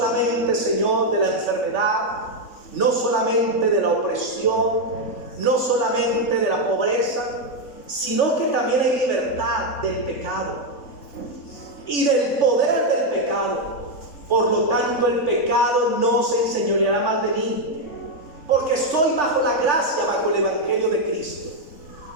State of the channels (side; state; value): right; late; 3.5 ms